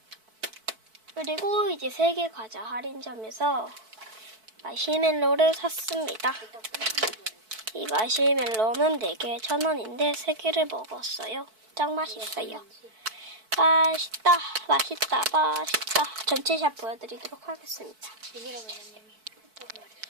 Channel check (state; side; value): late; left; 4.6 ms